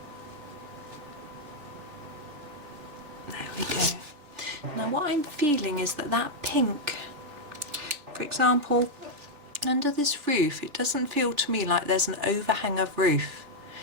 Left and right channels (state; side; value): late; left; 3.4 ms